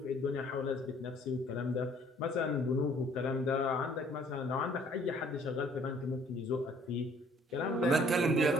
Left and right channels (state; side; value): normal; both; correlation 0.58